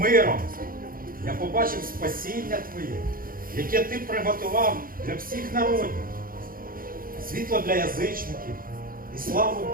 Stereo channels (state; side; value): late; left; 0.41 ms